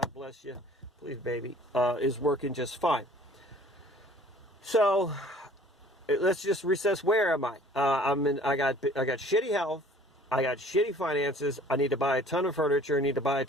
bless you, please baby, is working just fine. So let's just recess. Where am I? I got shitty health. I got shitty finances. I need to buy a ton of furniture. I need to buy a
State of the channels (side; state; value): both; normal; correlation 0.52